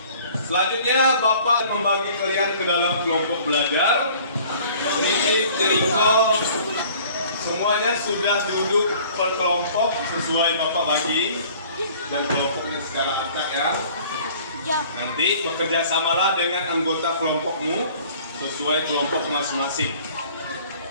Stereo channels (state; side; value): inverted; both; correlation -0.51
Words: Selanjutnya Bapak membagi kalian ke dalam kelompok belajar. Ini Jericho semuanya sudah duduk per kelompok sesuai Bapak bagi dan kelompoknya secara acak ya. Nanti bekerja samalah dengan anggota kelompokmu sesuai kelompok masing-masing.